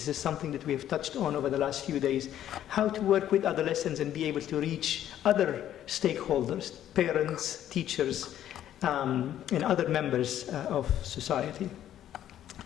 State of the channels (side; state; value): right; quieter; 11.4 dB